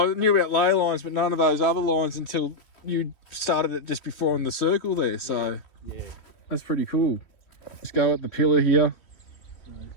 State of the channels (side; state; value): right; late; 3.1 ms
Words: knew about ley lines, but none of those other lines until you started it just before on the circle there, so yeah. That's pretty cool. Let's go at the pillar here. So